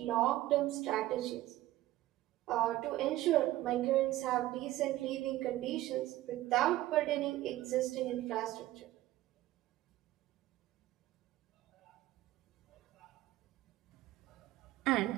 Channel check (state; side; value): quieter; left; 15.8 dB